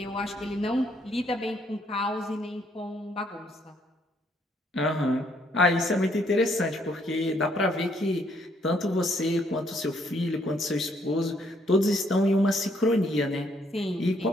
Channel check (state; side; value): normal; both; correlation 0.69